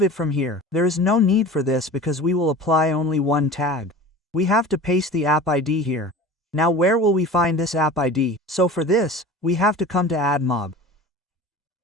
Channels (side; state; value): both; normal; correlation 0.37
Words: it from here. There is no need for this because we will apply only one tag. We have to paste the app ID here. Now where will we find this app ID? So for this, we have to come to AdMob.